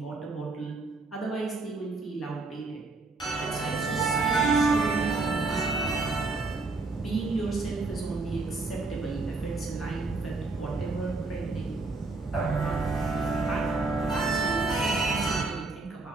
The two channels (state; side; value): quieter; left; 3.5 dB